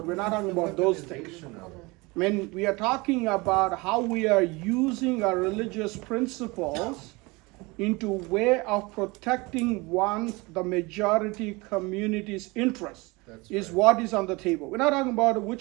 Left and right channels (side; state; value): left; quieter; 24.8 dB